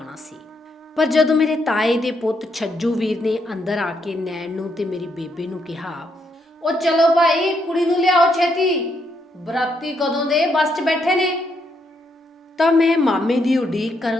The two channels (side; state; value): both; normal; correlation 0.77